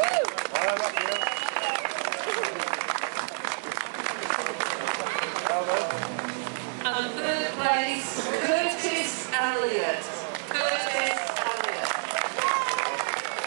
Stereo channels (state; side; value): silent; left; digital silence